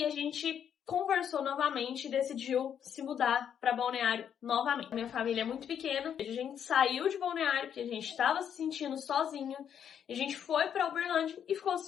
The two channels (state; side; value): quieter; right; 8.6 dB